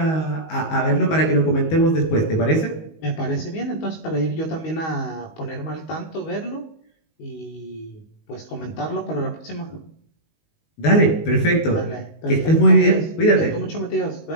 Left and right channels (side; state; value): right; late; 19 ms